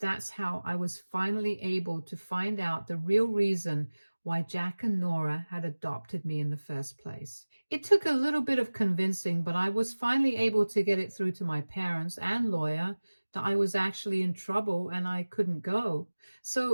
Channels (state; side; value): inverted; both; correlation -1.00